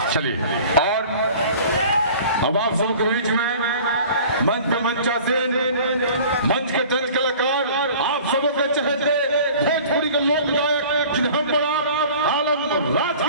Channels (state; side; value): inverted; both; correlation -0.45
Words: चलिए और अब आप सबके बीच में मंच पे मंचासीन मंच के तंज कलाकार आप सबों के चहेते भोजपुरी के लोक गायक जिन्हें हम बड़ा आलम राज